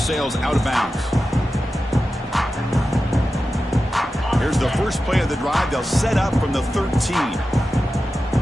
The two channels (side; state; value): both; normal; correlation 0.93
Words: sails out of bounds. Here's the first play of the drive. They'll set up from the 13.